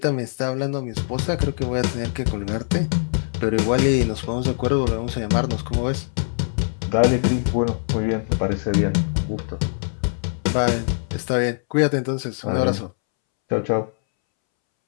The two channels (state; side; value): silent; right; 64 dB below the other